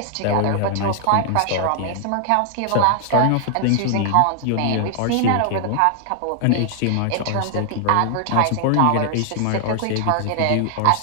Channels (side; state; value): both; different; correlation 0.00